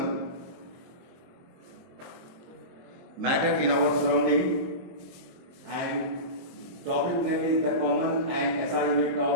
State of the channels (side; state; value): left; late; 23 ms